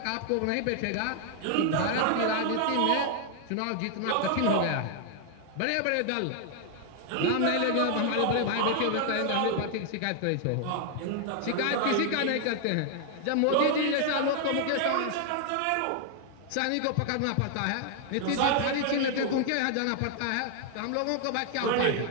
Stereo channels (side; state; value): both; different; correlation 0.00